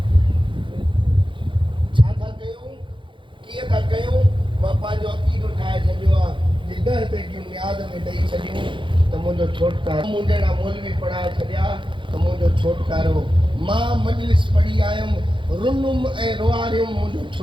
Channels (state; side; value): late; left; 0.24 ms